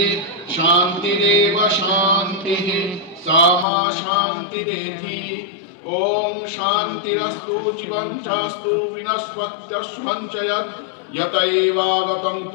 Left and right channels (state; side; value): drops out; right; at 3.7 s